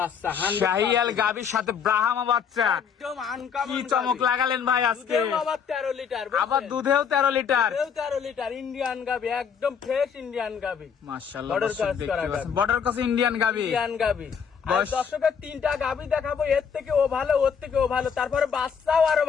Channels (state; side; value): quieter; right; 7.0 dB